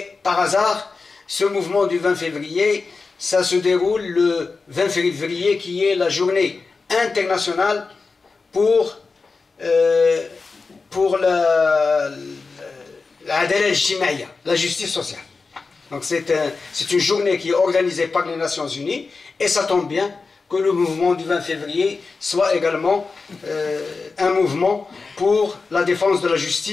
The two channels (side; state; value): right; quieter; 4.3 dB